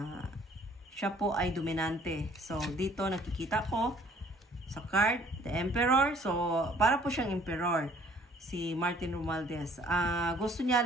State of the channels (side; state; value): both; normal; correlation 0.57